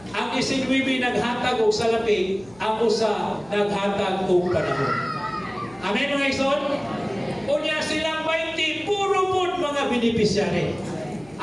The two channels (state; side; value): noise; left; hum, 24 dB below the sound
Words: Ang 19 naghatag og salapi, ang usa naghatag og panahon. Amen mga igsoon? Unya silang 20, puro po mga beneficiary.